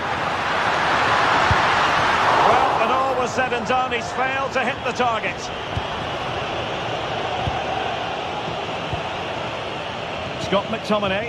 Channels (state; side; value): identical; both; correlation 1.00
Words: Well, when all was said and done, he's failed to hit the target. Scott